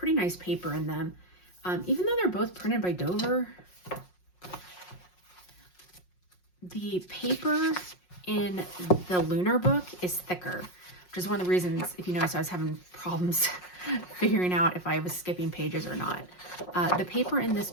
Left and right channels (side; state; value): right; late; 5.5 ms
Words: nice paper in them. Even though they're both printed by Dover, the paper in the Lunar book is thicker, which is one of the reasons, if you notice, I was having problems figuring out if I was skipping pages or not. The paper in this